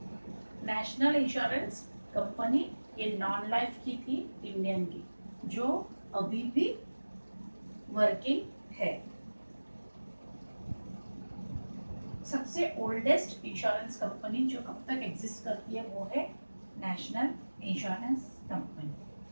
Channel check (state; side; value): inverted; both; correlation -1.00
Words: national insurance company, ये नॉन लाइफ की थी इंडियन की, जो अभी भी वर्किंग है। सबसे ओल्डेस्ट इंश्योरेंस कंपनी जो अब तक एग्जिस्ट करती है वो है नेशनल इंश्योरेंस